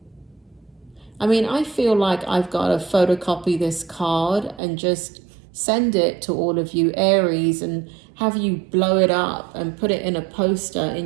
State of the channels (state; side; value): drops out; left; at 4.6 s